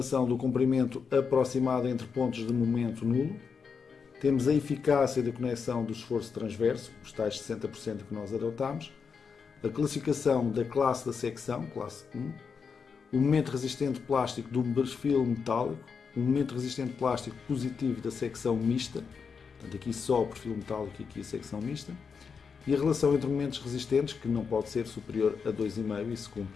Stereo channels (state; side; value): quieter; right; 5.8 dB